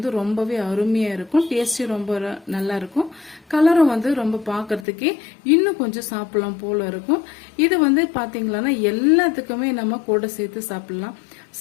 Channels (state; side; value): drops out; right; at 4.9 s